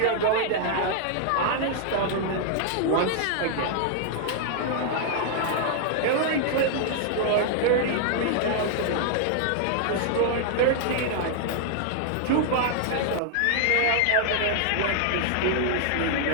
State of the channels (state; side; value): different; both; correlation -0.01